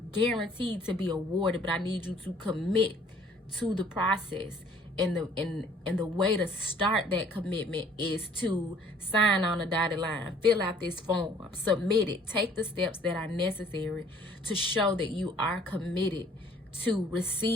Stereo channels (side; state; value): both; normal; correlation 0.56